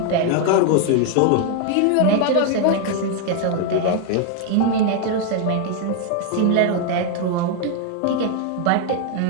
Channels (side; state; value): both; different; correlation 0.00